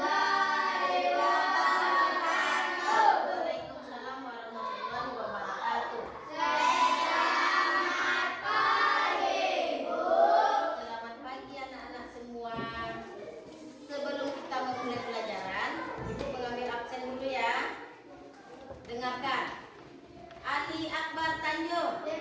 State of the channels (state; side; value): identical; both; correlation 1.00